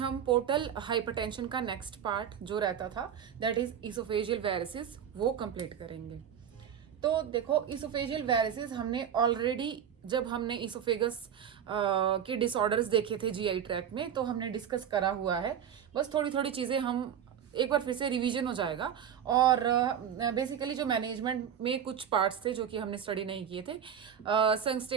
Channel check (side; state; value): left; quieter; 8.8 dB